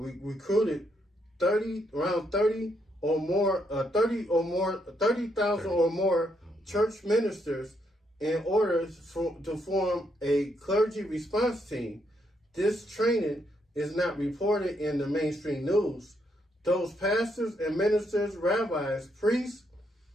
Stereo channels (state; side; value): normal; both; correlation 0.76